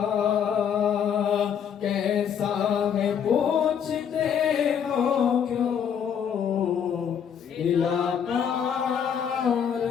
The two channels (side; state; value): right; quieter; 8.0 dB